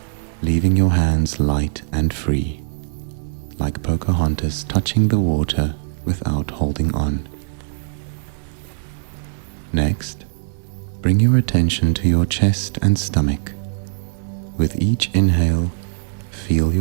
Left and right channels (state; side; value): silent; left; 55 dB below the other